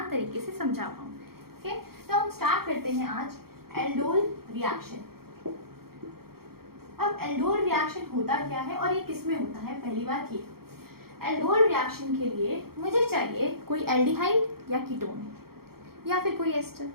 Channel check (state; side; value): late; left; 0.94 ms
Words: तरीके से समझा पाऊँ। ओके, तो हम स्टार्ट करते हैं आज एल्डोल रिएक्शन। अब एल्डोल रिएक्शन होता क्या है और ये किस में होता है? पहली बात ये, एल्डोल रिएक्शन के लिए मुझे चाहिए कोई एल्डिहाइड या कीटोन या फिर कोई एस्टर